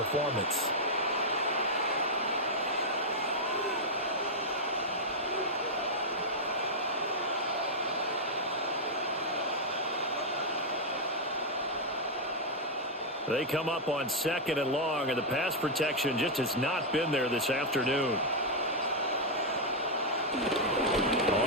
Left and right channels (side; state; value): both; normal; correlation -0.03